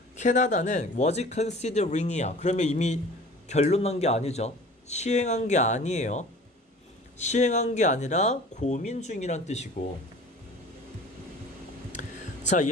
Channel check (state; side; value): normal; both; correlation 0.44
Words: 캐나다는 was considering이야. 그러면 이미 결론 난 게 아니죠. 시행한 게 아니에요. 시행한 게 아니라 고민 중이란 뜻이고. 자,